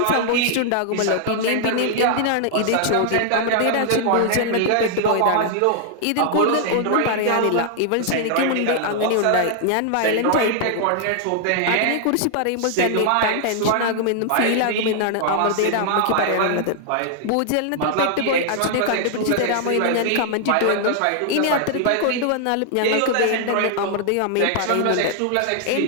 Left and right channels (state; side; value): different; both; correlation -0.01